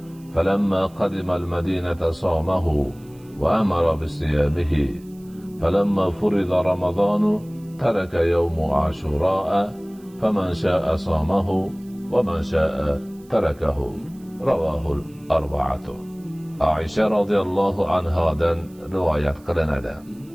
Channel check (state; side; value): noise; right; hiss, 29 dB below the sound